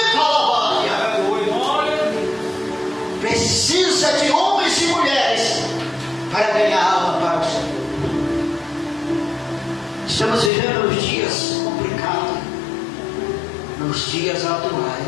Precisa de homens e mulheres para ganhar alma para o Senhor. Estamos vivendo nos dias complicados, nos dias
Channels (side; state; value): right; drops out; at 10.5 s